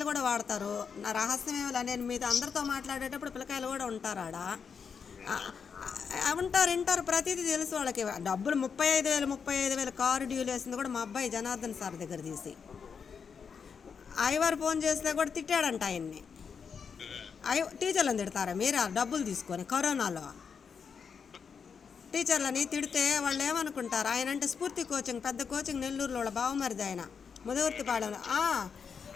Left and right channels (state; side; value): quieter; right; 6.3 dB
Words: కూడా వాడతారు. నా రహస్యం ఏమిలా, నేను మీతో అందరితో మాట్లాడేటప్పుడు పిల్లకాయలు కూడా ఉంటారు ఆడ. వింటారు, ప్రతిదీ తెలుసు వాళ్ళకి. డబ్బులు 35,000 కారు డ్యూలు వేసింది కూడా మా అబ్బాయి జనార్దన్ సార్ దగ్గర తీసి. ఐవారు ఫోన్ చేస్తే కూడా తిట్టాడంట ఆయన్ని. టీచర్లను తిడతారా మీరు డబ్బులు తీసుకొని? కరోనాలో టీచర్లని తిడితే వాళ్ళు ఏమనుకుంటారు? ఆయన అంటే స్ఫూర్తి కోచింగ్, పెద్ద కోచింగ్, నెల్లూరులో వాళ్ళ బావమరిది ఆయన, ముదవర్తిపాళెంలో.